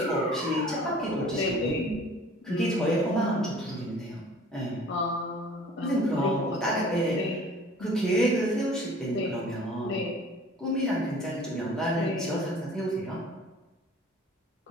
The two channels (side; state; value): both; normal; correlation 0.49